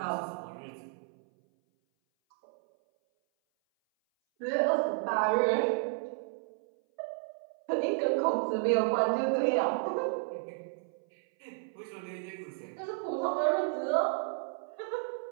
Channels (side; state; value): left; silent; 56 dB below the other